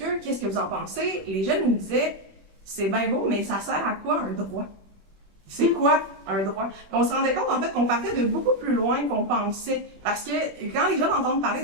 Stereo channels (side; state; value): left; late; 21 ms